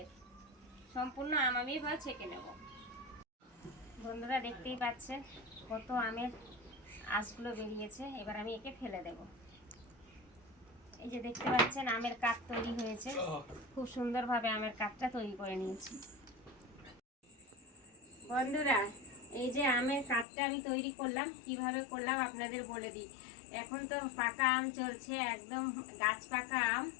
সম্পূর্ণ আম আমি এবার ছেঁকে নেব। বন্ধুরা, দেখতেই পাচ্ছেন কত আমের আঁশগুলো বেরিয়েছে। এবার আমি একে ফেলে দেব। এই যে দেখতে পাচ্ছেন আমের কাঠ তৈরি হয়েছে, খুব সুন্দরভাবে আমের কাঠটা তৈরি করে নিয়েছি। বন্ধুরা, এই যে আমের কাঠটা আমি তৈরি করলাম, কিভাবে করলাম আপনাদের বলে দিই। এখন তো পাকা আম চলছে, একদম গাছ পাকা আম।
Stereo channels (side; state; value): right; drops out; at 20.2 s